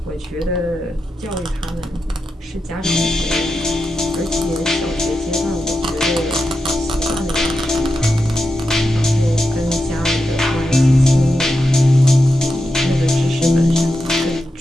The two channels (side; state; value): both; normal; correlation 0.88